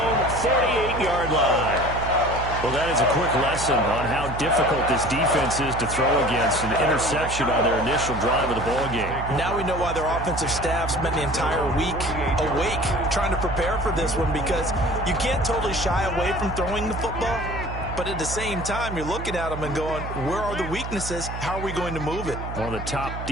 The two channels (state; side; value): noise; right; hum, 7 dB below the sound